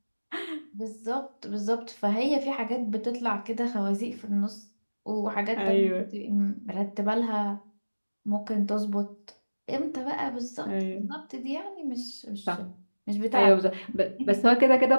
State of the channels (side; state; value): both; inverted; correlation -1.00